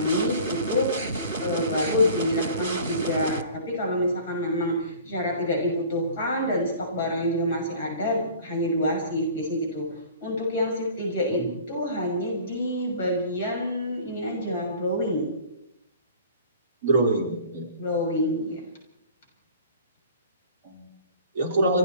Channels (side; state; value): both; inverted; correlation -0.46